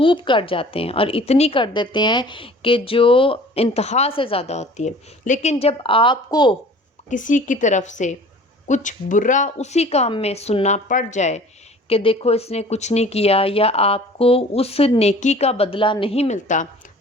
کر جاتے ہیں اور اتنی کر دیتے ہیں کہ جو انتہا سے زیادہ ہوتی ہے، لیکن جب آپ کو کسی کی طرف سے کچھ برا اسی کام میں سننا پڑ جائے کہ دیکھو اس نے کچھ نہیں کیا، یا آپ کو اس نیکی کا بدلہ نہیں ملتا،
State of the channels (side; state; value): both; normal; correlation 0.47